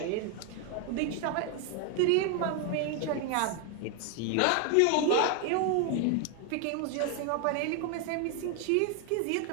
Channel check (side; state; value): both; different; correlation 0.01